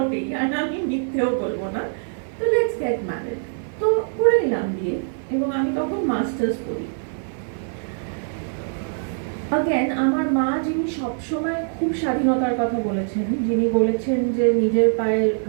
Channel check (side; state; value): left; silent; 56 dB below the other